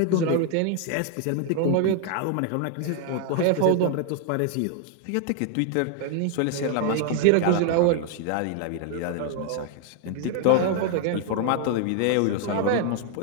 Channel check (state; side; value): different; both; correlation 0.00